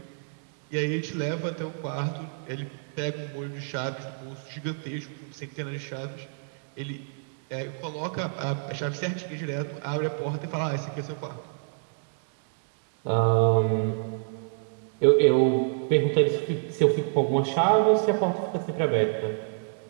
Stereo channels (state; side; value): silent; left; digital silence